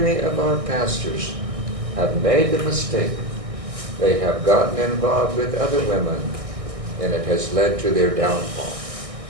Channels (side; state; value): left; late; 1.6 ms